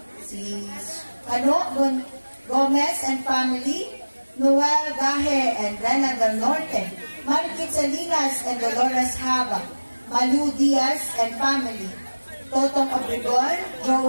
Si Gomez and family, Noel Gahe and Rena del Norte, Marikit Salinas and Dolores Haba, Malu Diaz and family, Totong Obregon,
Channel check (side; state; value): both; inverted; correlation -1.00